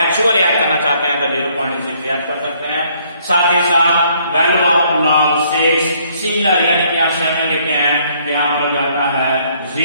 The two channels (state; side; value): inverted; both; correlation -0.66